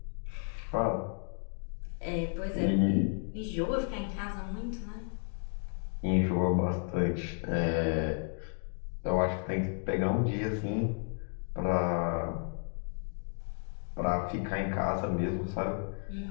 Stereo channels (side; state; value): right; silent; 55 dB below the other